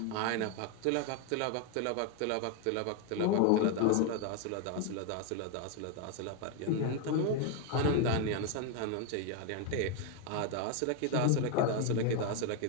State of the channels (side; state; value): both; different; correlation 0.01